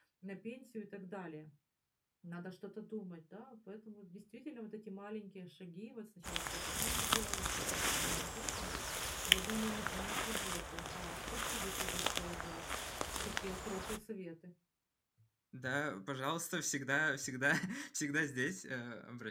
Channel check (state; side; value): identical; both; correlation 1.00